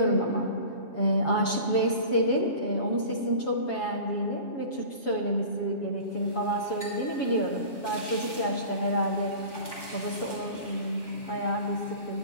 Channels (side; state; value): right; late; 7.1 ms